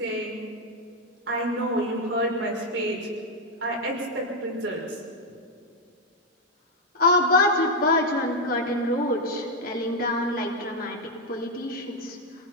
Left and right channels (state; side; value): normal; both; correlation 0.03